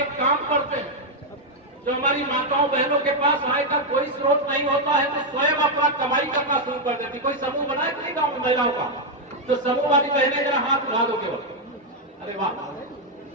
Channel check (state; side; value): normal; both; correlation 0.00